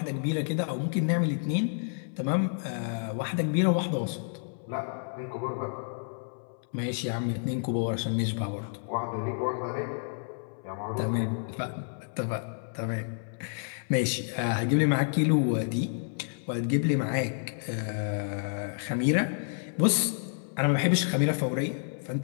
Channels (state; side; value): silent; right; 58 dB below the other